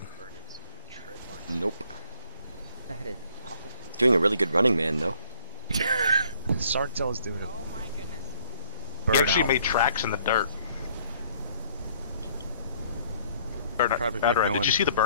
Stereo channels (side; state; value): both; inverted; correlation -0.61